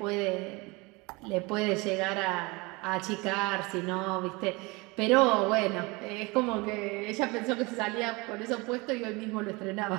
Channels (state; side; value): quieter; left; 25.3 dB